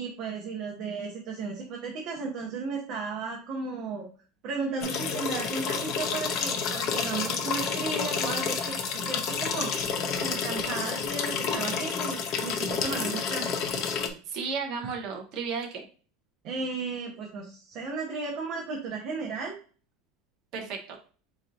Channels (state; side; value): normal; both; correlation 0.35